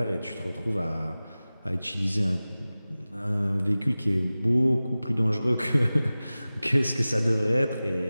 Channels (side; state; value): both; inverted; correlation -0.97